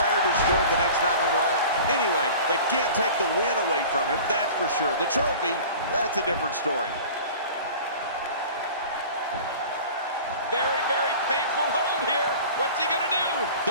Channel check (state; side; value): inverted; both; correlation -0.40